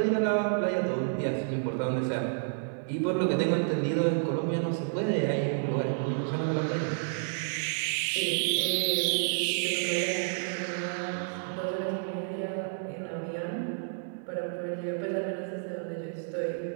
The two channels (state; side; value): silent; left; 58 dB below the other